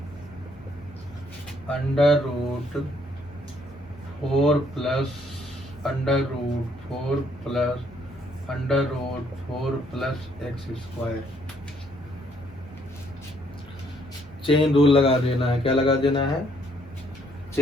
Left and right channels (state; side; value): normal; both; correlation 0.67